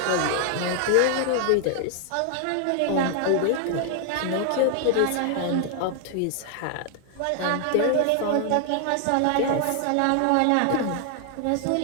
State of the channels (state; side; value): different; both; correlation 0.00